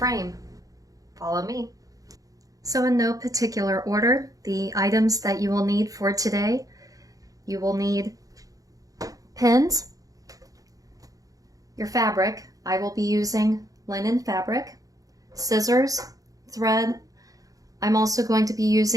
Follow me. So in no particular order, the items that you will need for today, you will need pins, your fabric. I will be using linen fabric, scissors, thread. I'm also going to be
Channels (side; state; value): left; late; 0.17 ms